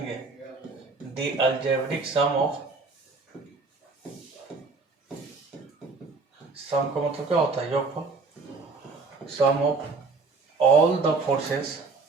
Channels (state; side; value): quieter; left; 4.1 dB